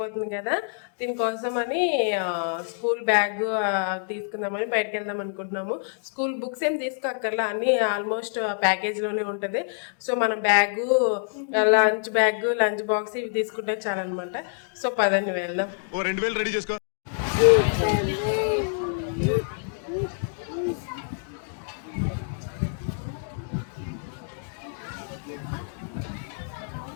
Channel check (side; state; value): right; silent; digital silence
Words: కదా, దీనికోసం అని స్కూల్ బ్యాగ్ తీసుకుందామని బయటకు వెళ్దాం అనుకుంటున్నాము. స్కూల్ బుక్స్ ఏం తీసుకోక్కర్లా, అన్నీ ఆల్మోస్ట్ ప్యాకేజ్లోనే ఉంటుంది. సో మనం బ్యాగు, లంచ్ బాక్స్ ఇవి తీసుకుంటే చాలన్నమాట. సో పదండి వెళ్దాం. 2000 రెడీ చేసుకో.